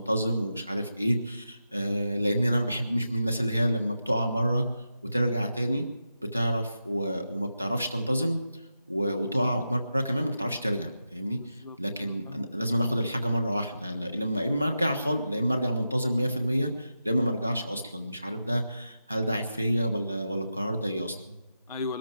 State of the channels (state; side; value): inverted; both; correlation -0.88